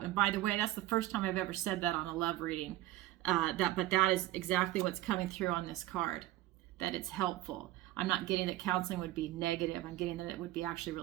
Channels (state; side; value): quieter; left; 15.7 dB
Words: And by the way, that's the first time I've ever said that on a love reading. But that is exactly what's coming through on this card, that it's helpful. I'm not getting that counseling would be negative. I'm getting that it would be actually